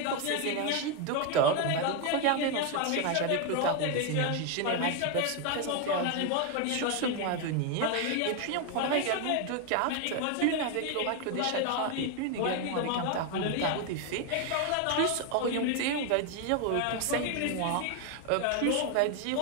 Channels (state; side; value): different; both; correlation 0.01